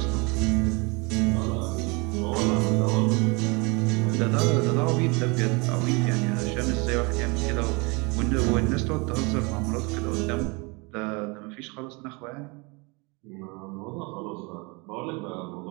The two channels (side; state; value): left; quieter; 28.7 dB